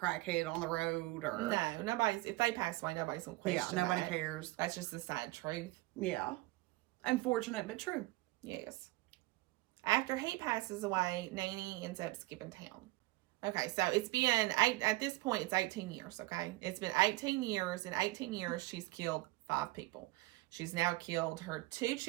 on the road. Or No, nobody's, if they pass away, nobody's going to question nobody that. cares. That's just the sad truth. Yeah. Unfortunate, but true. Yes. After he passes away, Nanny ends up skipping town. Okay, so it's been, at this point, it's 18 years, okay? It's been 18 years. In 18 years, she's killed 5 people. She's now killed her 2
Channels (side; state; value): left; quieter; 20.3 dB